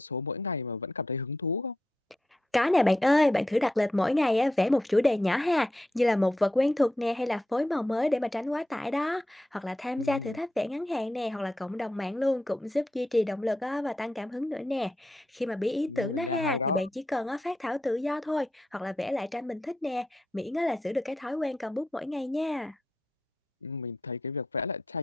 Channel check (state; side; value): normal; both; correlation 0.85